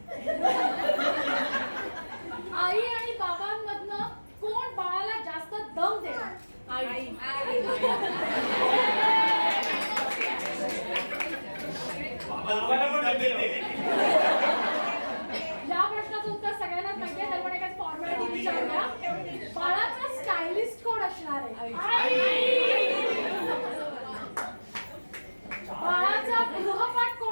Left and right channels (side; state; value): both; inverted; correlation -1.00